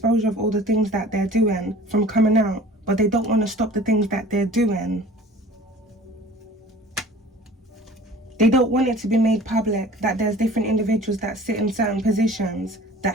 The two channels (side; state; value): both; normal; correlation 0.45